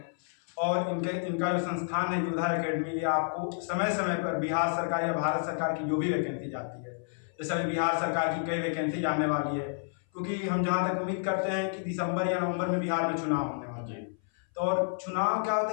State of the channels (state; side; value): silent; right; 57 dB below the other